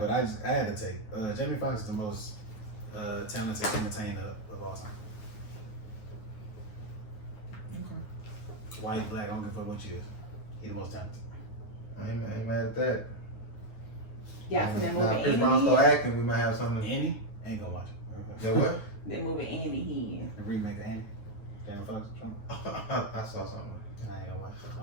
I had to take. Jamie Foxx is the most talented entertainer of all time. Okay. White, black, I don't give a fuck what you is. He the most talented. I ain't mad at that. Y'all seen that movie Now, Chris Brown Andy? start acting, we might have something. Annie? Ain't gonna watch it. That what? That movie Andy he The remake of Annie. Jamie Foxx. Trump. I saw something. I ain't gonna watch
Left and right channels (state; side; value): late; right; 9.3 ms